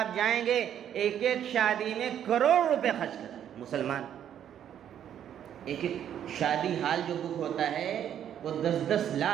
جائیں گے، ایک ایک شادی میں کروڑ روپے خرچ کرتے ہیں مسلمان۔ ایک ایک شادی ہال جو بک ہوتا ہے وہ 10-10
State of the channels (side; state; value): left; quieter; 9.9 dB